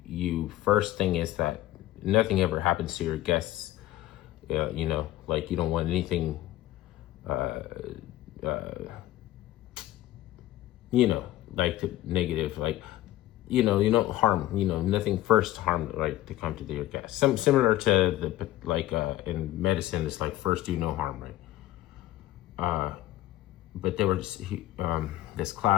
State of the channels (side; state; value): right; quieter; 15.3 dB